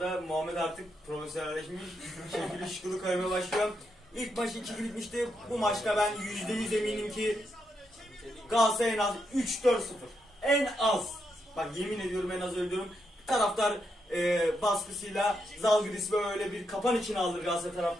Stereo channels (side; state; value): both; normal; correlation 0.82